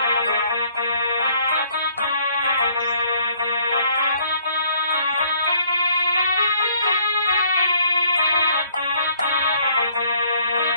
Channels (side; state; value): both; inverted; correlation -0.62